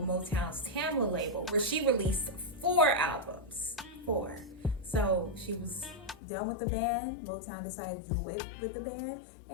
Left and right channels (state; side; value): drops out; right; at 6.2 s